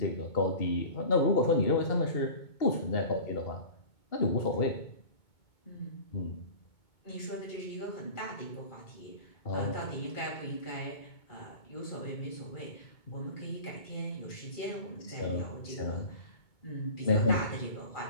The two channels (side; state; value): right; late; 2.2 ms